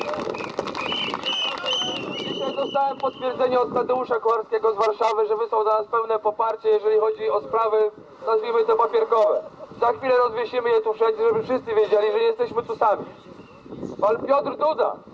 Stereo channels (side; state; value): both; identical; correlation 1.00